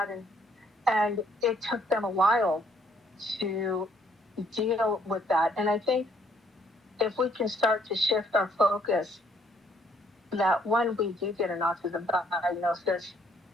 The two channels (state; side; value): normal; both; correlation 0.66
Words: And it took them a while to deal with that. And I think if we can start to shift our focus, that when we do get an autism diagnosis,